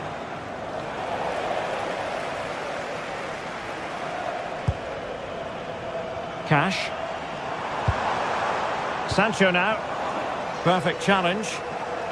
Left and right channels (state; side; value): identical; both; correlation 1.00